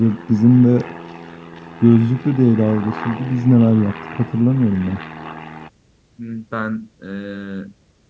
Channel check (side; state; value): both; identical; correlation 1.00